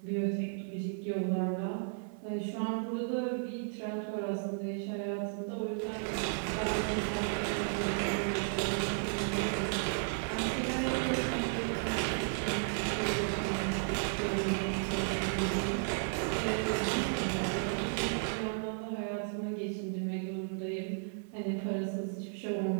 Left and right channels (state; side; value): silent; left; 55 dB below the other